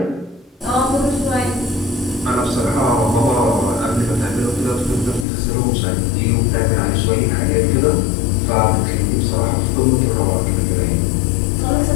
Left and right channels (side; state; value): right; drops out; at 5.2 s